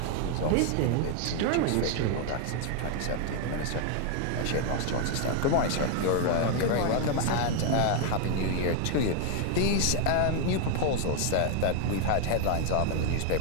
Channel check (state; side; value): different; both; correlation 0.00